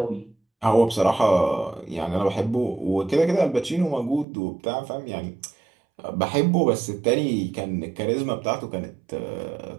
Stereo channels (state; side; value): drops out; left; at 4.2 s